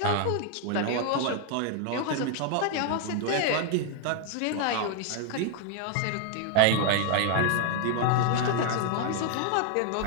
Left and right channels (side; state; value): both; different; correlation 0.00